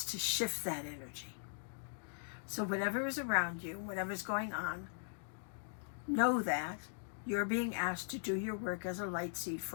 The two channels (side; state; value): right; silent; digital silence